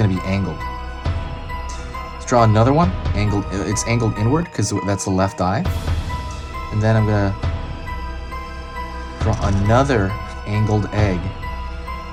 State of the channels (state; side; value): identical; both; correlation 1.00